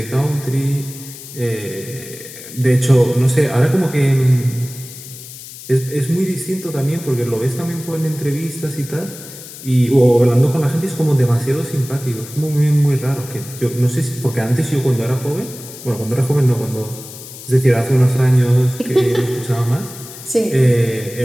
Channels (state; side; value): noise; left; hiss, 15 dB below the sound